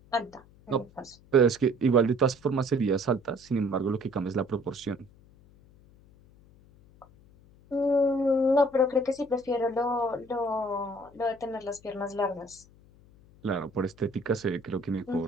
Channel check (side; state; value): left; noise; hum, 26 dB below the sound